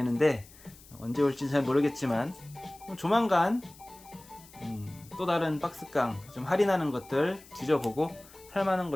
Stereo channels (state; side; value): noise; left; hiss, 22 dB below the sound